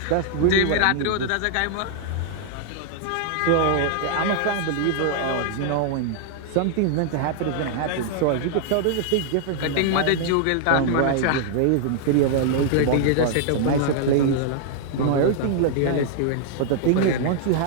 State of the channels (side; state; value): both; different; correlation -0.01